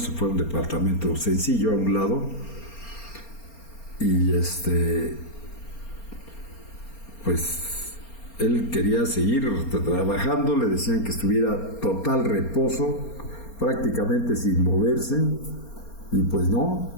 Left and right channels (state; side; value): late; right; 4.3 ms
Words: fue a un departamento sencillo a un lado, y pues él quería seguir trabajando. Le decían que estuviera total reposo, prácticamente sin moverse, y pues